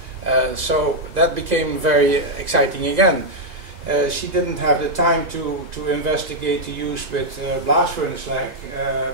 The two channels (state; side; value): late; left; 1.9 ms